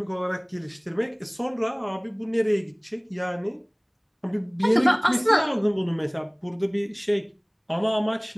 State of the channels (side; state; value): both; identical; correlation 1.00